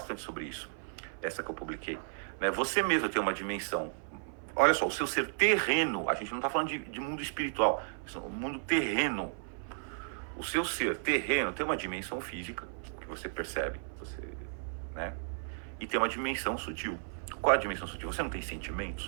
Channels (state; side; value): silent; left; 55 dB below the other